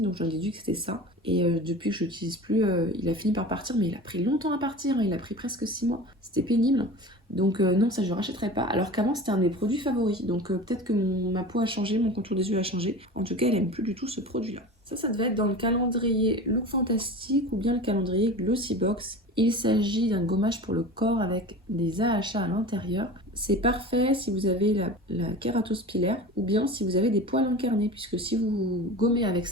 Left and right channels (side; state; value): both; normal; correlation 0.34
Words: donc j'en ai déduit que c'était ça. Et depuis que je l'utilise plus, il a fini par partir, mais il a pris longtemps à partir, hein. Il a pris presque 6 mois. C'était pénible. Donc non, ça je ne rachèterai pas. Alors qu'avant c'était un de mes produits favoris. Donc peut-être que ma peau a changé, mon contour des yeux a changé. En tout cas, elle aime plus du tout ce produit-là. Ça devait être dans le calendrier Look Fantastique ou bien le calendrier Glossybox. Il s'agit d'un gommage pour le corps avec des AHA à l'intérieur. C'est parfait si vous avez la kératose pilaire ou bien si vous avez des poils incarnés, puisque si vous gommez avec